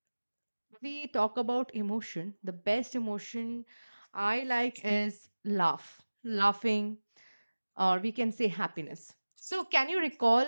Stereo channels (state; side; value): inverted; both; correlation -1.00